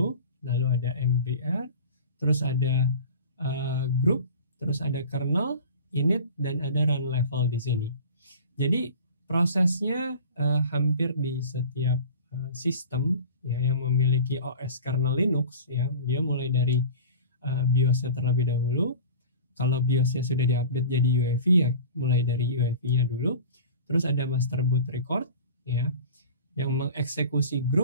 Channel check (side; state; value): both; inverted; correlation -0.38